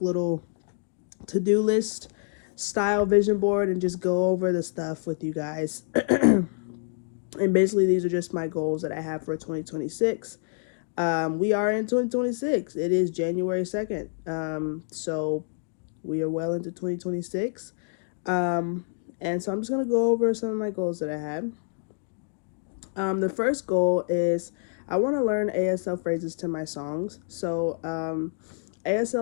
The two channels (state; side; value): silent; right; digital silence